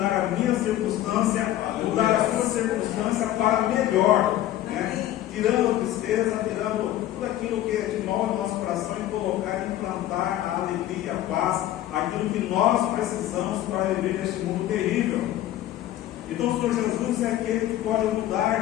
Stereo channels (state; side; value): quieter; right; 13.5 dB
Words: a minha circunstância, mudar a sua circunstância para melhor, né? Tirando a tristeza, tirando tudo aquilo que é de nós, no nosso coração, e colocar, implantar a alegria, a paz, aquilo que nós precisamos para viver neste mundo terrível. Então o Senhor Jesus é aquele que pode